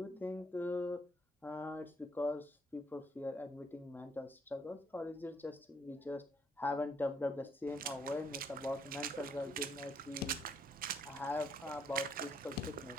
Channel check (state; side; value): normal; both; correlation 0.70